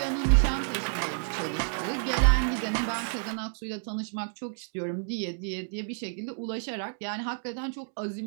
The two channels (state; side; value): silent; left; digital silence